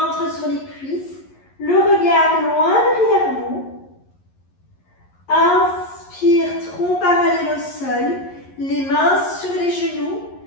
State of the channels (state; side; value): late; right; 11 ms